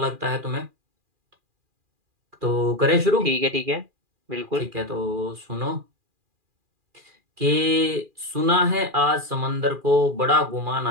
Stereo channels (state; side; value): late; left; 2.4 ms